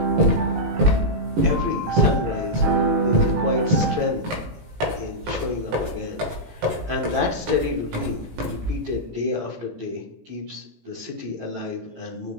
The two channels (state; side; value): late; left; 18 ms